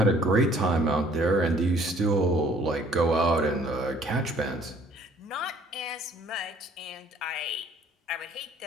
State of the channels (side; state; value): both; normal; correlation 0.58